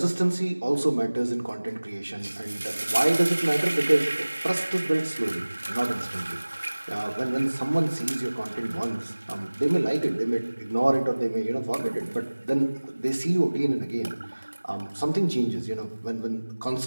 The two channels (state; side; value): inverted; both; correlation -1.00